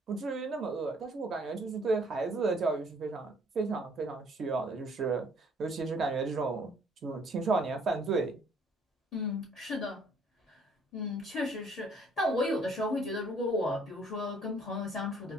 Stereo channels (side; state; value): both; normal; correlation 0.61